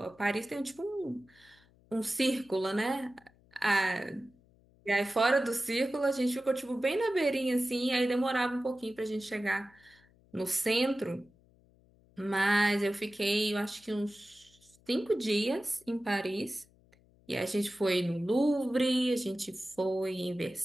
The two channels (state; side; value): noise; left; hum, 30 dB below the sound